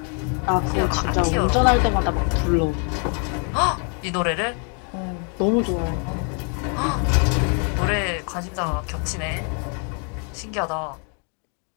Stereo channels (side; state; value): right; quieter; 39.2 dB